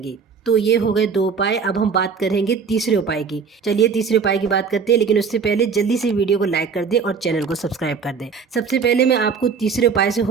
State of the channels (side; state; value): left; quieter; 5.8 dB